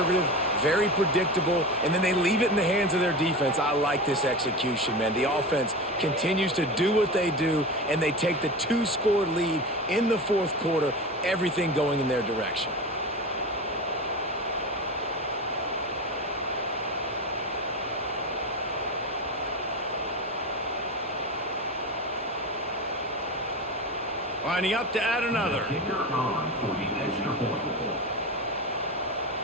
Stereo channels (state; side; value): normal; both; correlation 0.26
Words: very predictable, and then they leave it in the hands of their defense. I like this execution, man. The offense continues to do what they do, and they take the 2-score lead in the 4th quarter, everything going in their direction. Lining up to add another. Kicker on for the extra point.